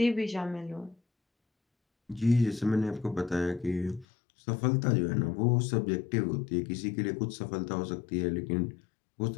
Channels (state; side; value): drops out; right; at 4.0 s